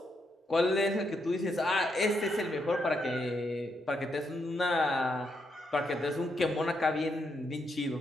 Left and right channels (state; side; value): normal; both; correlation 0.79